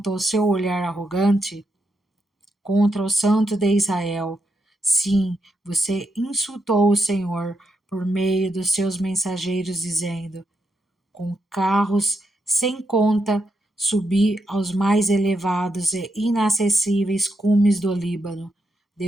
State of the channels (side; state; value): both; normal; correlation 0.82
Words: seu olhar arrogante? Contra o Santo de Israel. Sim, você insultou o Senhor por meio dos seus mensageiros, dizendo: com carros sem conta, subi aos mais elevados e inacessíveis cumes do Líbano.